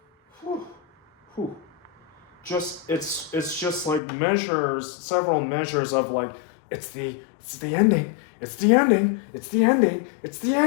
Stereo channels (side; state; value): right; drops out; at 4.0 s